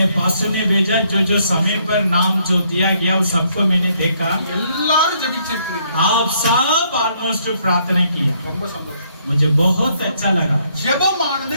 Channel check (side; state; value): both; inverted; correlation -0.70